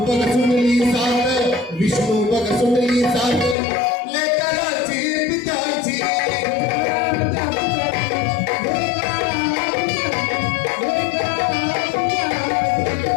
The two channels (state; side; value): drops out; right; at 3.6 s